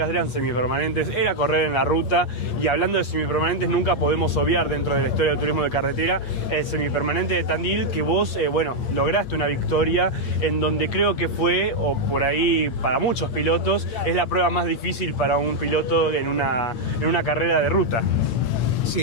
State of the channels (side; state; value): right; late; 8.4 ms